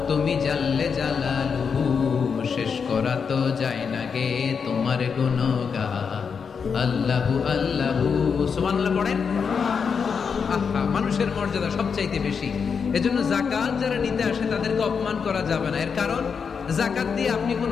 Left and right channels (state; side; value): quieter; right; 6.1 dB